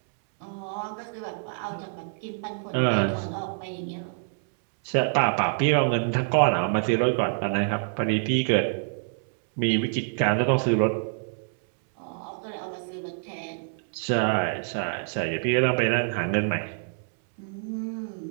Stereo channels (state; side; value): silent; left; 61 dB below the other